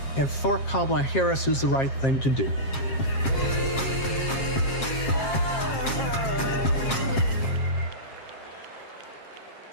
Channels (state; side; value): late; right; 7.5 ms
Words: and for Kamala Harris is the right thing to do.